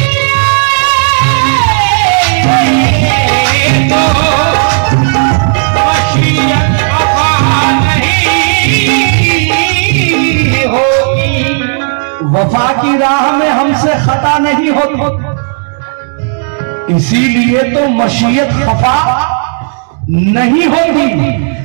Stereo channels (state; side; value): silent; left; digital silence